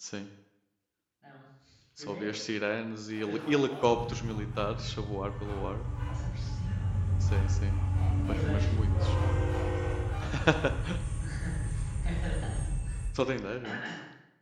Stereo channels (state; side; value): identical; both; correlation 1.00